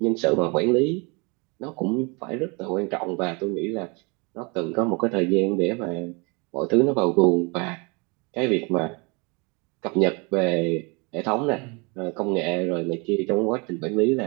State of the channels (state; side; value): quieter; left; 30.1 dB